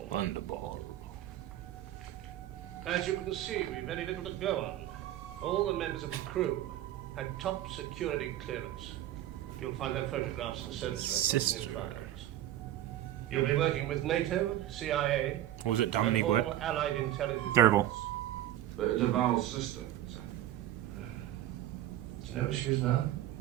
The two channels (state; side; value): quieter; left; 13.2 dB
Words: Thunderball. As you can see, we've very little to go on. All the members of the crew had top security clearance. You'll find their photographs and service records in your files. You'll be working with NATO, CIA, What was it, and Dominique? all What? allied intelligence. Thunderball. The Duval's sister. Do you know where she is now?